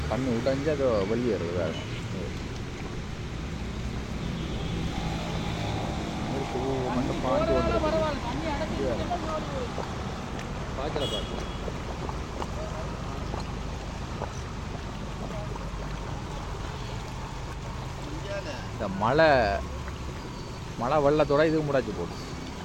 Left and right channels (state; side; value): identical; both; correlation 1.00